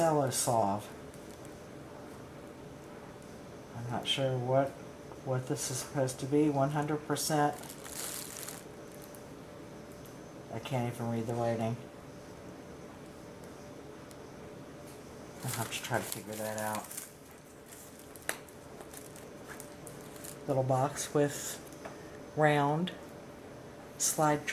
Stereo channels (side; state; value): both; identical; correlation 1.00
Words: Solve. I'm not sure what this is supposed to be. 100%. I can't even read the writing. I'll have to try to figure that out. Little box with round slide